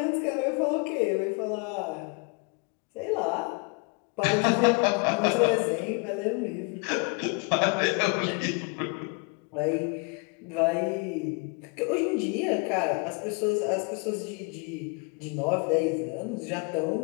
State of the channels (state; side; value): quieter; right; 32.5 dB